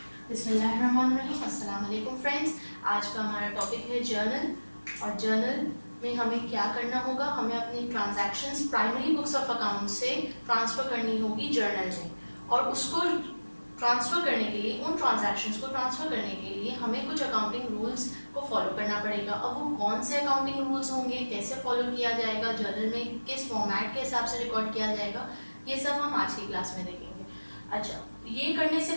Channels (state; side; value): inverted; both; correlation -1.00